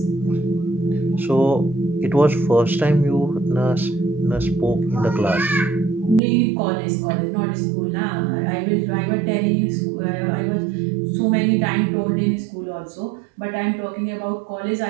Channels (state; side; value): drops out; left; at 6.2 s